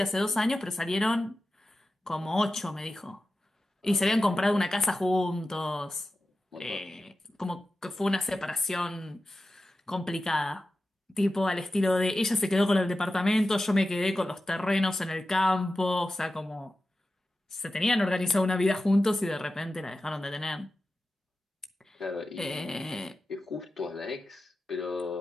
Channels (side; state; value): both; normal; correlation 0.93